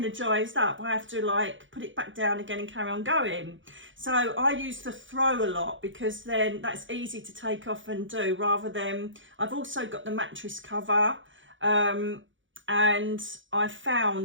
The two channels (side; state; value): left; late; 0.56 ms